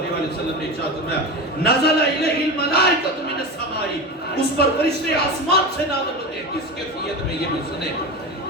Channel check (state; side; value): normal; both; correlation 0.23